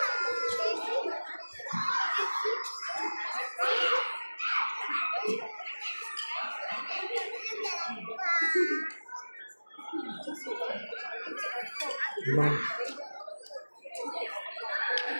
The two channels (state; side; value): inverted; both; correlation -1.00